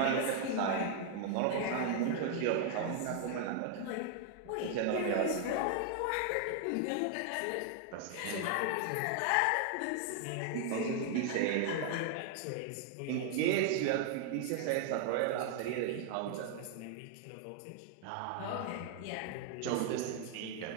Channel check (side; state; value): both; different; correlation 0.00